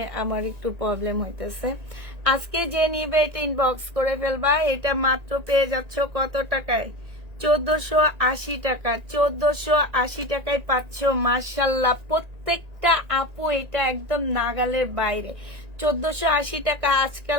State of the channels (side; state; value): left; late; 1.9 ms